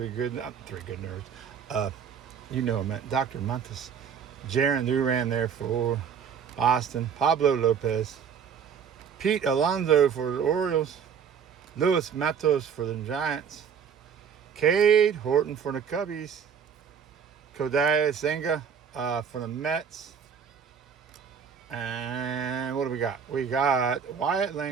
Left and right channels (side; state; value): left; quieter; 7.1 dB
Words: good nerds. You know him, Dr. Montes. Jaron Duran there for Boston. Pablo Lopez. Pete Alonso for the Orioles. Luis Matos for the Giants. Cade Horton for the Cubbies. Kodai Senga for the Mets. And what do we got? We got Wyatt